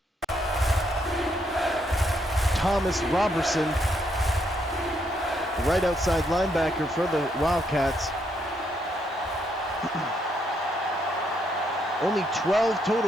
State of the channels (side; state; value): both; normal; correlation 0.75